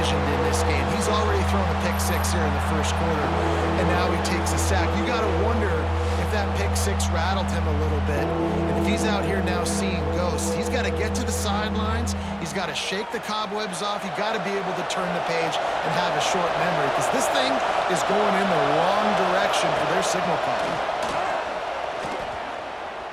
in this game. He's already thrown a pick 6 here in the first quarter, and now he takes a sack. You got to wonder if that pick 6 rattled him a little bit. And if he's out here now seeing ghosts, he's got to get to the sidelines. He's got to shake the cobwebs off. He's got to be able to turn the page and have a short memory, because this thing is going in the wrong direction for their signal call.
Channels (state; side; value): identical; both; correlation 1.00